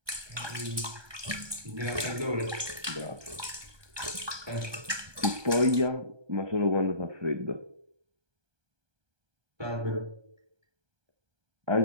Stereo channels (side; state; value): left; late; 1.3 ms